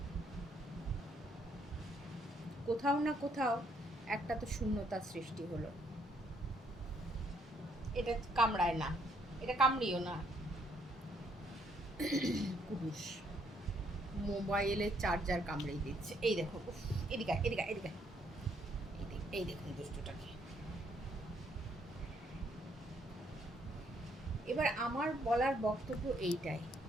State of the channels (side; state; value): both; normal; correlation 0.69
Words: কোথাও না কোথাও একটা তো শূন্যতার সৃষ্টি হলো। এটা কামড়ায় না, এটা কামড়িও না। পুরুষ মোবাইলের চার্জার কামড়িয়ে দিচ্ছে। এই দেখো, এদিকে এদিকে এদিকে, এই দেখুন দুষ্টটাকে। এবার আমার বলার বক্তব্য এইটাই।